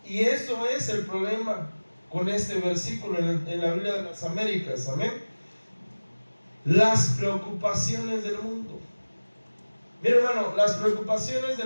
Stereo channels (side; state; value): both; inverted; correlation -1.00